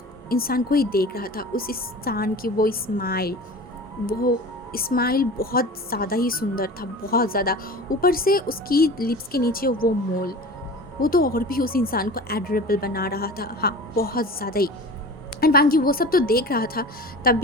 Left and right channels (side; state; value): both; normal; correlation 0.37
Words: इंसान को ही देख रहा था, उस इंसान की वो स्माइल बहुत ज़्यादा ही सुंदर था, बहुत ज़्यादा। ऊपर से उसकी लिप्स के नीचे वो मोल, वो तो और भी उस इंसान को एडोरेबल बना रहा था, हाँ बहुत ज़्यादा ही। एंड वांग जी वो सब तो देख रहा था,